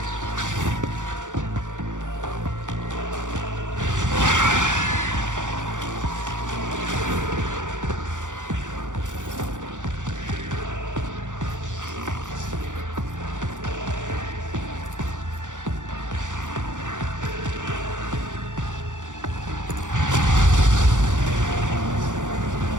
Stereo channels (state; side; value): late; left; 0.86 ms